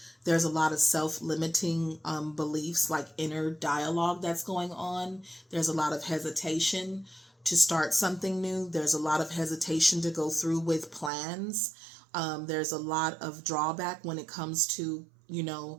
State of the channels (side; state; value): left; drops out; at 11.1 s